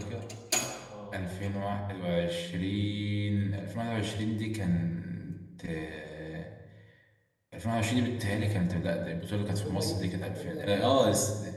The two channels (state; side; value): identical; both; correlation 1.00